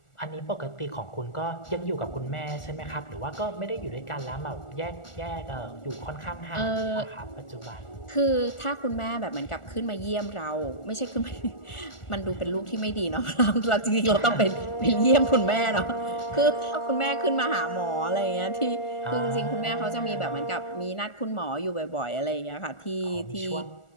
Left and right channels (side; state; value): right; late; 1.4 ms